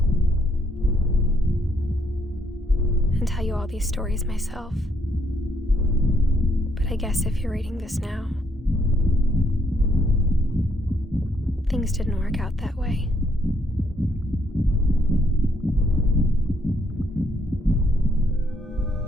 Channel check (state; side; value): normal; both; correlation 0.71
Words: And tell you all these stories myself. But I guess if you're reading this now, things didn't work out that way.